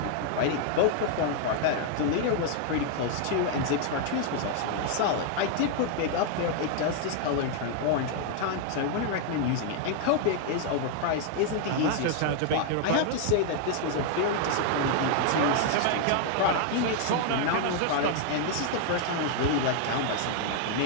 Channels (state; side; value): different; both; correlation 0.00